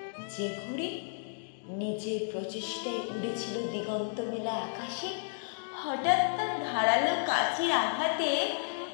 যে ঘুড়ি নিজের প্রচেষ্টায় উড়েছিল দিগন্ত মেলা আকাশে। হঠাৎ তার ধারালো কাঁচির আঘাতে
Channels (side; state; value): right; silent; digital silence